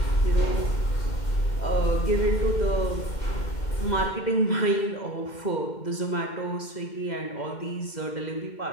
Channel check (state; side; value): late; right; 2.1 ms